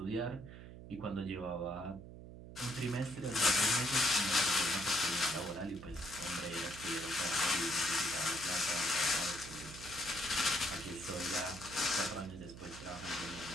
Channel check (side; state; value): right; noise; hum, 13 dB below the sound